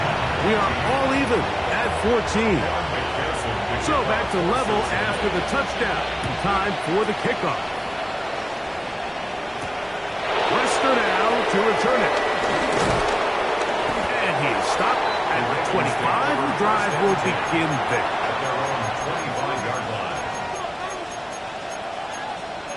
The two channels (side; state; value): both; identical; correlation 1.00